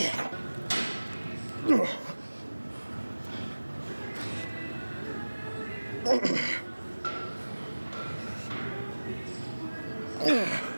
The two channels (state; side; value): inverted; both; correlation -1.00